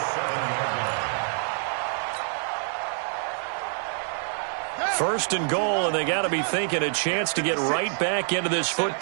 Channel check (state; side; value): silent; left; 58 dB below the other